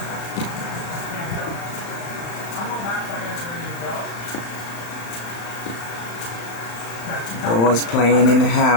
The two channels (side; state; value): right; late; 35 ms